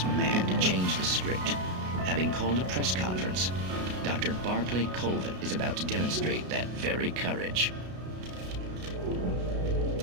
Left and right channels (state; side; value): late; left; 33 ms